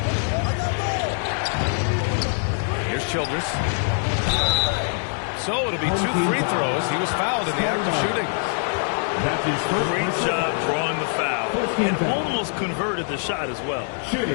Here's Childress. So it'll be 2 free throws. He was fouled in the act of shooting. Great job drawing the foul. And almost converted the shot as well.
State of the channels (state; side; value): silent; right; 60 dB below the other